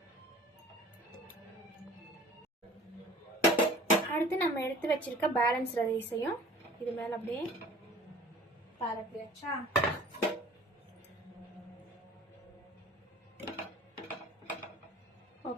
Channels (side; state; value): both; normal; correlation 0.46